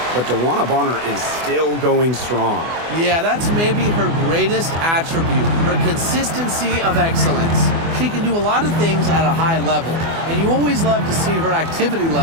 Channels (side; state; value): left; late; 24 ms